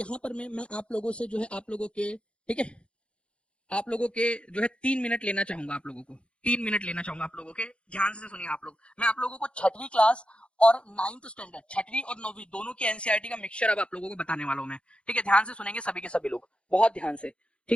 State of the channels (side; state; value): right; late; 0.059 ms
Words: पर मैं आप लोगों से जो है आप लोगों के, ठीक है, आप लोगों के जो है 3 मिनट लेना चाहूंगा, आप लोगों को 3 मिनट लेना चाहूंगा आप लोगों के, ध्यान से सुनिए आप लोग। मैं आप लोगों को छठवीं क्लास और 9th स्टैंडर्ड, छठवीं और 9वीं दोनों की एनसीईआरटी का मिक्सचर अब आप लोगों को बताने वाला हूं मैं, ठीक है, ध्यान से सुनेंगे सभी के सभी लोग, बहुत ध्यान से,